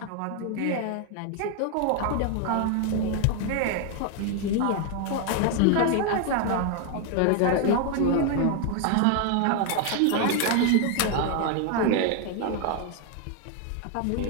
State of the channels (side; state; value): both; different; correlation 0.01